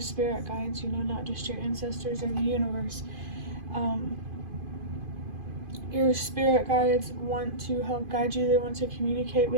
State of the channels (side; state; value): left; late; 2.5 ms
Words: spirit guides, not just your ancestors or the universe. Your spirit guides want to help guide you. They want to communicate